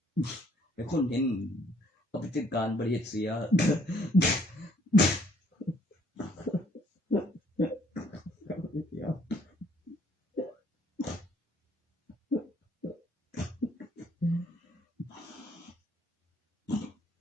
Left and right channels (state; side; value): normal; both; correlation 0.64